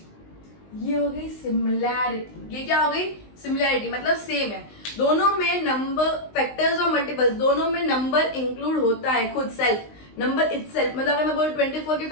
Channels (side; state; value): right; late; 19 ms